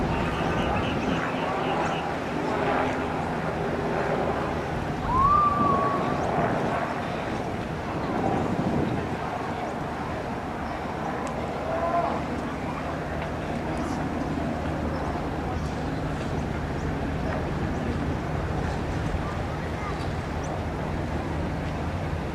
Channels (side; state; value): both; identical; correlation 1.00